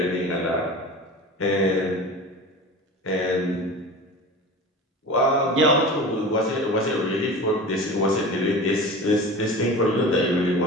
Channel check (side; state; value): both; normal; correlation 0.34